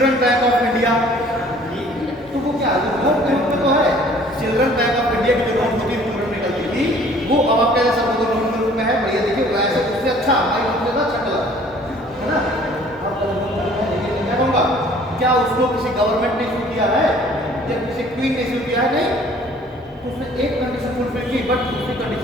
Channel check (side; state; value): both; normal; correlation 0.54